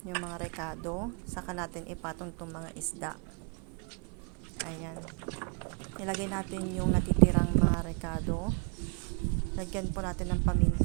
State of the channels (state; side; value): quieter; left; 38.6 dB